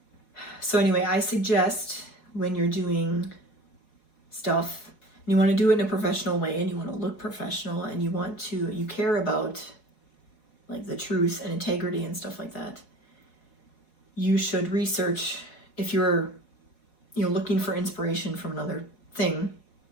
So anyway, I suggest when you're doing stuff, and you want to do it in a professional way, and you want to look professional, and you care about like the truth and integrity and stuff like that, you should research. If you're looking for inspiration from another thing,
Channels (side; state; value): right; late; 4.7 ms